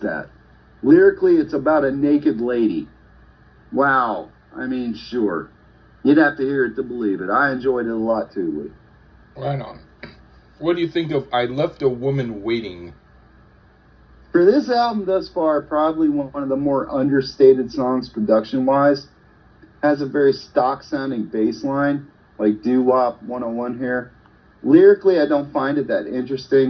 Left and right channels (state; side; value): identical; both; correlation 1.00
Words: Lyrically, it's about a naked lady. Wow. I mean, sure. You'd have to hear it to believe it. I enjoyed it a lot too, Lee. Right on. What do you think of I Left a Woman Waiting? For this album thus far, probably one of the more understated songs production-wise. Has a very stock-sounding bass line, like Doo-Wop 101 here. Lyrically, I don't find it that